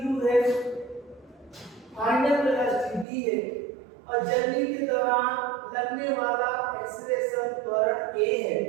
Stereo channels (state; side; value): drops out; left; at 3.1 s